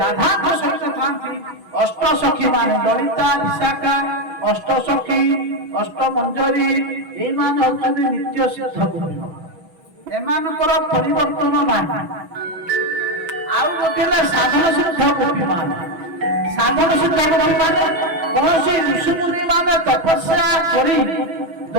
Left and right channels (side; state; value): left; late; 6.1 ms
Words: ରାଧାଙ୍କ ସହିତ ଥାନ୍ତି। ଅଷ୍ଟସଖୀ ମାନେ ଲଳିତା ବିଶାଖା ଅଷ୍ଟସଖୀ ଅଷ୍ଟମଞ୍ଜରୀ ଏଇମାନେ ହଉଛନ୍ତି ନିତ୍ୟ ସିଦ୍ଧ ଗୋପୀ। ଏମାନଙ୍କର ପରିବର୍ତ୍ତନ ନାହିଁ। ଆଉ ଗୋଟେ ହେଲା ସାଧନ ସିଦ୍ଧ ଗୋପୀ ମାନେ। ସାଧନ ସିଦ୍ଧ ଗୋପୀ ମାନେ କୌଣସି ଋଷିମୁନି ମାନେ ତପସ୍ୟା କରି